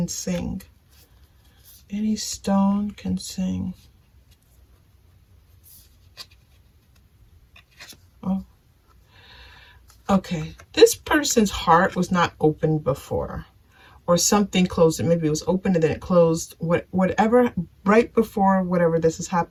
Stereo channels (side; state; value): both; identical; correlation 1.00